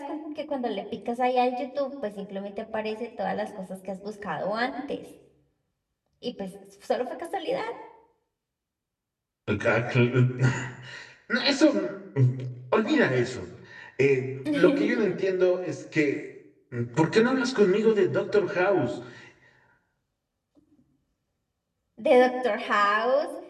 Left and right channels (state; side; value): identical; both; correlation 1.00